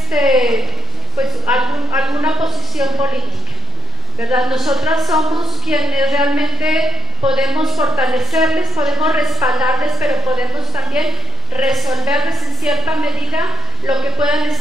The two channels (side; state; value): both; normal; correlation 0.52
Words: posición política, ¿verdad? Nosotras somos quienes realmente podemos fortalecerles, podemos respaldarles, pero podemos también resolverles en cierta medida lo que puedan